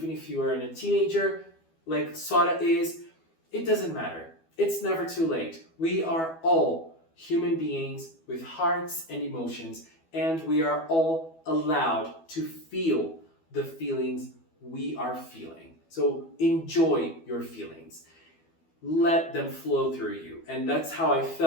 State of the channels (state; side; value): late; right; 12 ms